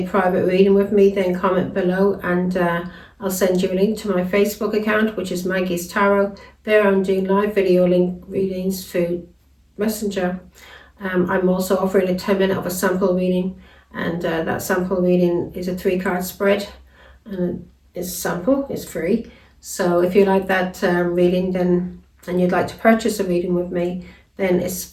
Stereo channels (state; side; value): identical; both; correlation 1.00